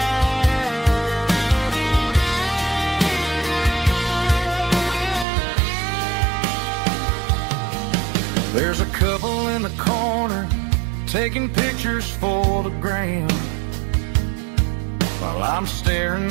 There's a couple in the corner taking pictures for the gram, while I'm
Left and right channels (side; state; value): left; drops out; at 5.2 s